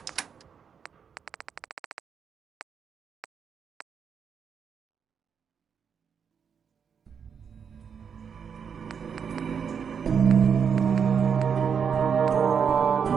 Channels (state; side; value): quieter; left; 6.9 dB